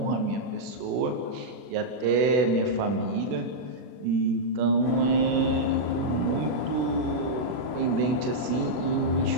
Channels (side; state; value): left; late; 40 ms